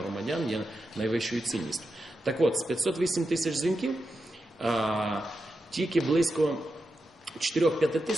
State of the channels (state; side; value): normal; both; correlation 0.88